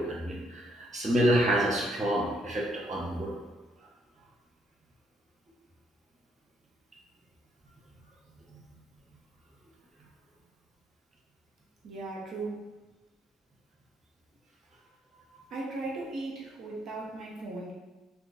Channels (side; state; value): both; normal; correlation 0.72